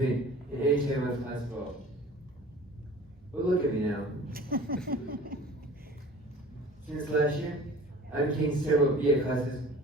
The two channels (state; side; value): normal; both; correlation 0.44